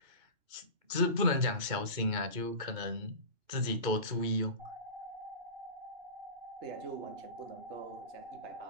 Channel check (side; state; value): left; late; 2.2 ms